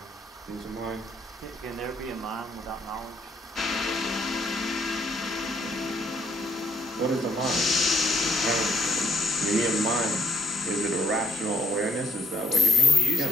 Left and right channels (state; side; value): normal; both; correlation 0.68